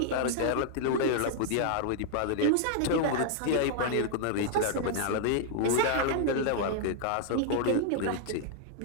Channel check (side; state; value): both; different; correlation 0.00